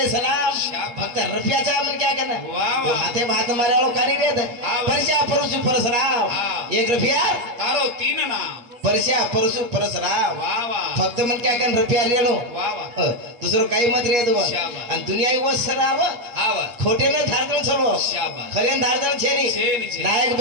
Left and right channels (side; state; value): left; late; 8.4 ms